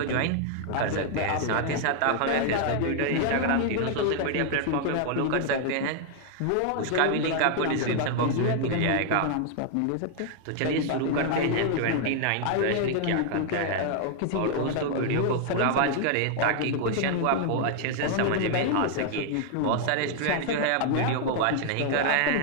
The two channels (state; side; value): different; both; correlation 0.00